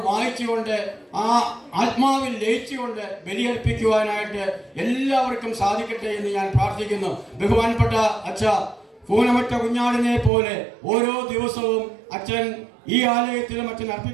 വായിച്ചുകൊണ്ട് ആ ആത്മാവിൽ ലയിച്ചുകൊണ്ട് ബലിയർപ്പിക്കുവാനായിട്ട് എല്ലാവർക്കും സാധിക്കട്ടെ എന്ന് ഞാൻ പ്രാർത്ഥിക്കുന്നു. ബഹുമാനപ്പെട്ട അച്ഛ, പൂനമറ്റ കുഞ്ഞാടിനെ പോലെ ഓരോ ദിവസവും അച്ഛൻ ഈ ആലയത്തിലും അച്ഛൻ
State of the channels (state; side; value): drops out; left; at 10.3 s